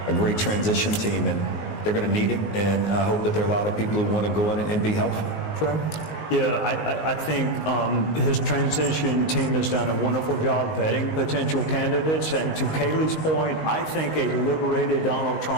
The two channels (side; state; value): right; late; 19 ms